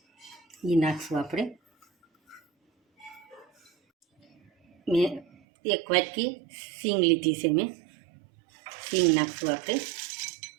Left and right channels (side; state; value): left; drops out; at 5.2 s